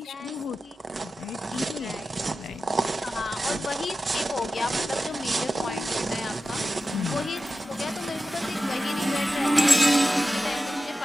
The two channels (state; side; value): normal; both; correlation 0.93